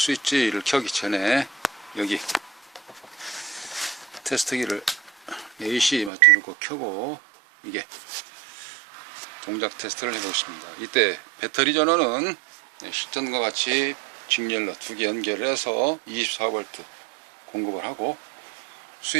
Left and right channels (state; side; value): drops out; left; at 6.1 s